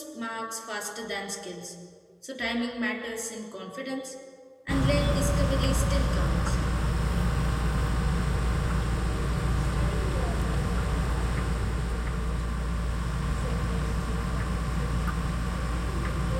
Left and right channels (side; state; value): both; identical; correlation 1.00